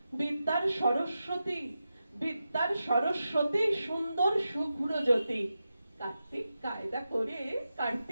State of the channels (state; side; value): inverted; both; correlation -0.90